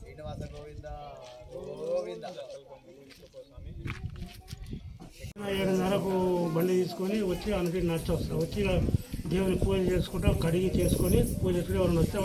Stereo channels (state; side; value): identical; both; correlation 1.00